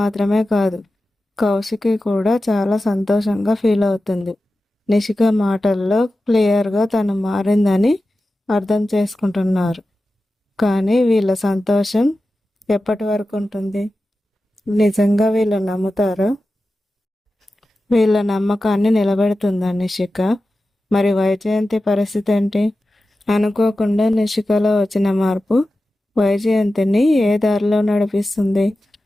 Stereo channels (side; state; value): both; normal; correlation 0.93